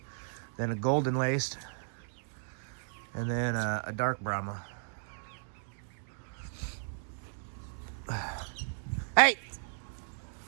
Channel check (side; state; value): left; silent; digital silence